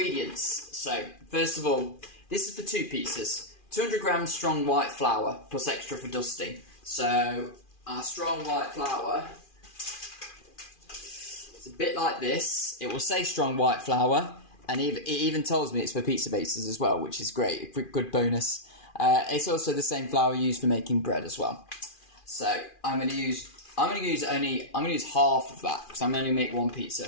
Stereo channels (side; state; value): right; late; 2.4 ms